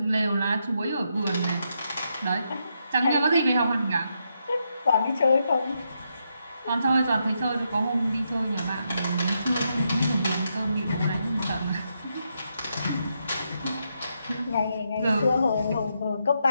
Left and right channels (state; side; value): inverted; both; correlation -0.81